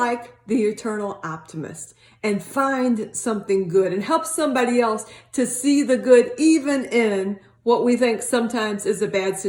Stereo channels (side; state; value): both; identical; correlation 1.00